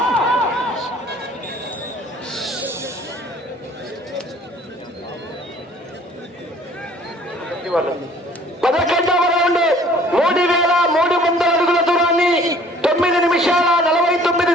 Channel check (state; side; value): normal; both; correlation 0.54